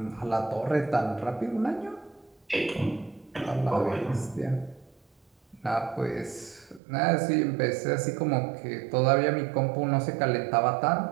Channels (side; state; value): left; drops out; at 6.8 s